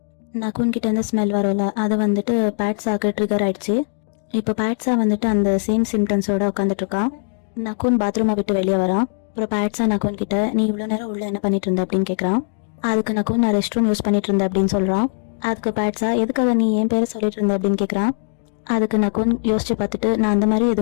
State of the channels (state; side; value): silent; right; digital silence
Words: நக்குன் கிட்ட இருந்து ஸ்மெல் வரும்ல, அது வந்துட்டு பேட்ஸாக்கு ட்ரிகர் ஆயிடுச்சு. இப்போ பேட்ஸா வந்துட்டு அந்த சேம் சிம்டம்ஸோட உட்காந்துட்டு இருக்கான். நக்குன் பாத்ரூமை விட்டு வெளியே வரான். அப்புறம் பேட்ஸா நக்குன் கிட்ட நீ இவ்வளோ நேரம் உள்ள என்ன பண்ணிட்டு இருந்த அப்படின்னு கேட்குறான். அதுக்கு நக்குன் நான் ரெஸ்ட் ரூம் யூஸ் பண்ணிட்டு இருந்தேன் அப்படின்னு சொல்கிறான். அதுக்கு பேட்ஸா எதுக்காக நீ என் பேரை சொல்லிட்டு இருந்த அப்படின்னு கேட்குறான். அதுக்கு நக்குன் யோசிச்சு பார்த்துட்டு நான் அந்த மாதிரி